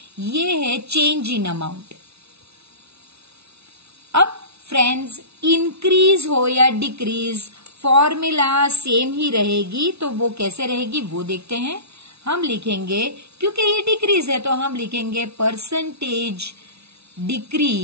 ये है चेंज इन अमाउंट। अब फ्रेंड्स इंक्रीज हो या डिक्रीज फॉर्मूला सेम ही रहेगी, तो वो कैसे रहेगी वो देखते हैं। हम लिखेंगे, क्योंकि ये डिक्रीज है तो हम लिखेंगे परसेंटेज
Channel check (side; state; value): left; late; 0.80 ms